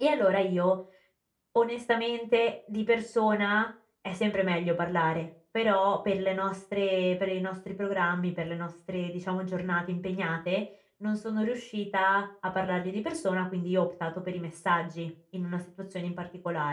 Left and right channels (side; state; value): both; identical; correlation 1.00